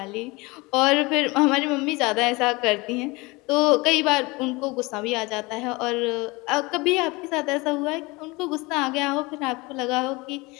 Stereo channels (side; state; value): right; quieter; 24.3 dB